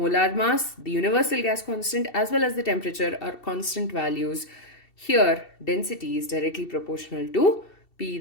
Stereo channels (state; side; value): late; right; 2.7 ms